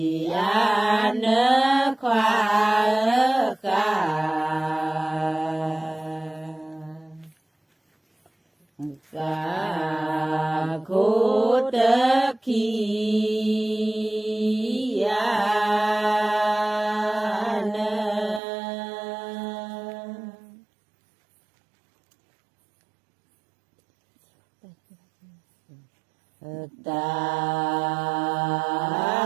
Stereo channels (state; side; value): drops out; left; at 18.4 s